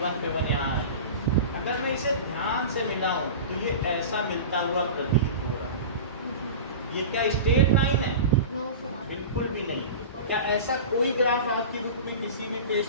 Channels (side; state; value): both; inverted; correlation -0.31